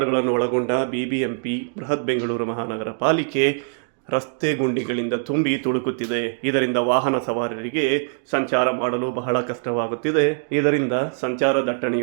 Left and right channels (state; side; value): silent; left; digital silence